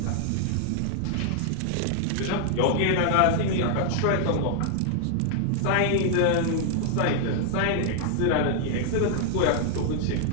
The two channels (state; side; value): different; both; correlation 0.00